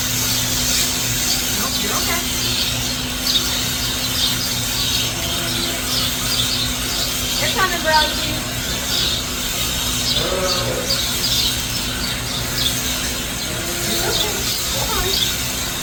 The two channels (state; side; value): identical; both; correlation 1.00